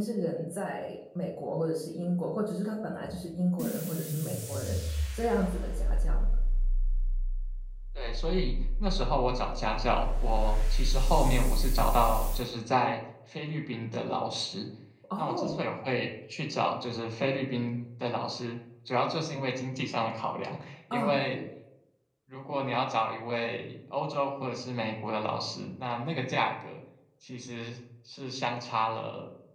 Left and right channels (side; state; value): both; identical; correlation 1.00